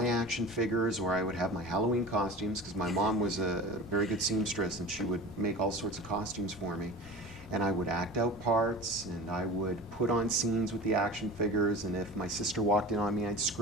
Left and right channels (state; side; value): normal; both; correlation 0.35